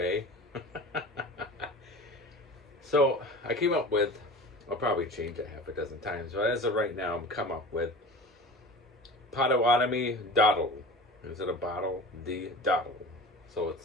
So I came up with, I'll probably change it half a dozen times, but as of right now, I'm come up with Potawatomi Dottle. Instead of bottle, the Dottle. So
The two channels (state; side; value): normal; both; correlation 0.36